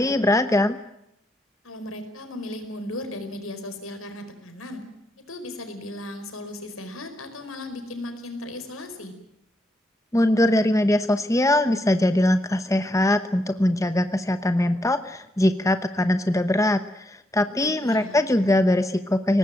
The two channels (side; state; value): both; normal; correlation 0.79